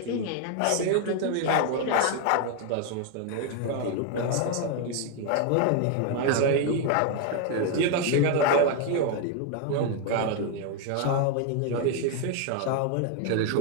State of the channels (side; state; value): both; different; correlation 0.01